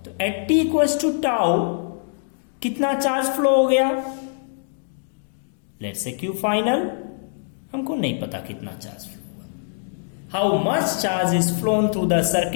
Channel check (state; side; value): silent; right; digital silence